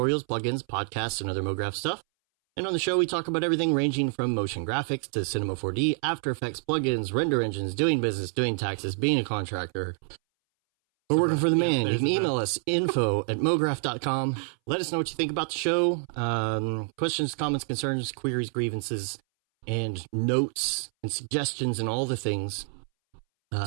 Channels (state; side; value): silent; left; 60 dB below the other